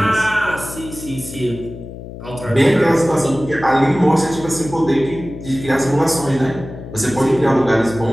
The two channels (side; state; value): left; noise; hum, 12 dB below the sound